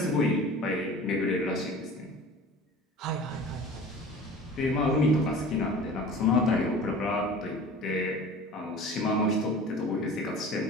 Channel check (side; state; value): both; normal; correlation 0.40